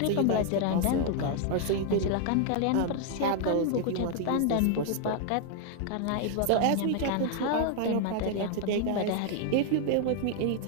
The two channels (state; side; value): different; both; correlation 0.00